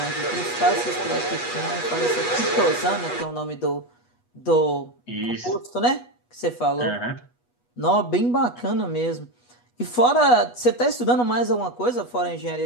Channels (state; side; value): late; right; 8.2 ms